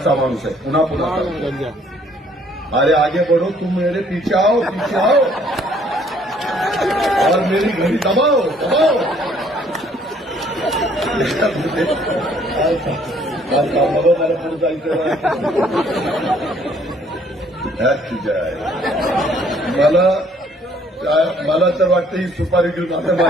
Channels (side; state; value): both; normal; correlation 0.62